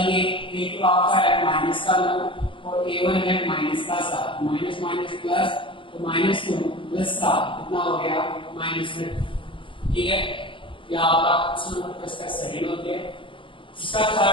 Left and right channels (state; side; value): late; right; 0.25 ms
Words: a2 आपका है -9 और a1 है -7 माइनस माइनस प्लस तो -2 प्लस 7 कितना हो गया -2। ठीक है या आपका क्वेश्चन नंबर इसका सेकंड हो गया। इसका